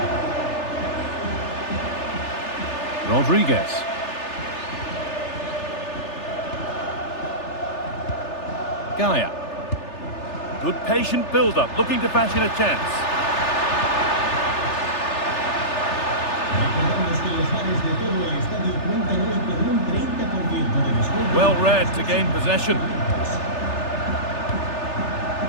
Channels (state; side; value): late; right; 3.4 ms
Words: Rodriguez. Gaia. Good patient build-up, looking to fashion a chance. Well read to gain possession.